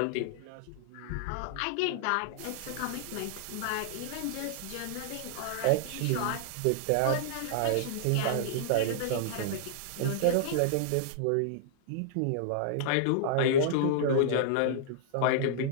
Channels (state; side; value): different; both; correlation -0.01